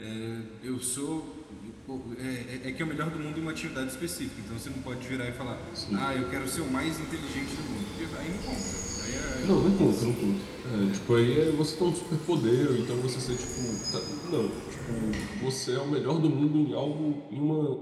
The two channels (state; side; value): identical; both; correlation 1.00